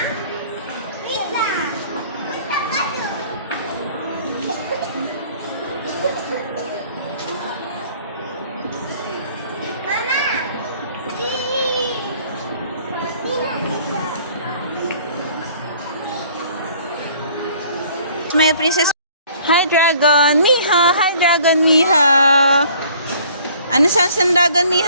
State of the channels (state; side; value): inverted; both; correlation -0.55